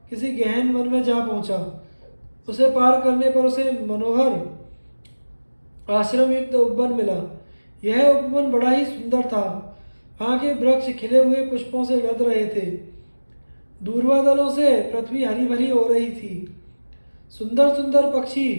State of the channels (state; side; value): inverted; both; correlation -1.00